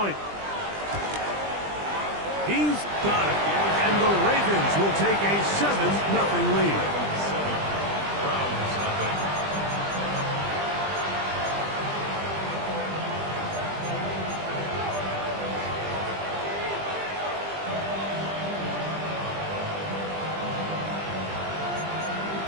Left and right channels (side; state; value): left; late; 20 ms